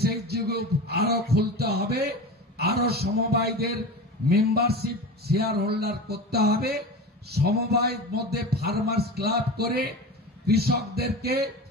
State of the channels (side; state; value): both; normal; correlation 0.30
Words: গ্রুপ আরো খুলতে হবে, আরো সমবায়দের মেম্বারশিপ শেয়ার হোল্ডার করতে হবে, সমবায়ের মধ্যে ফার্মার্স ক্লাব করে কৃষকদেরকে,